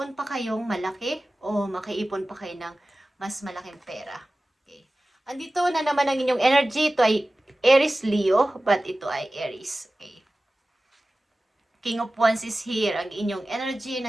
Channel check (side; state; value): both; normal; correlation 0.96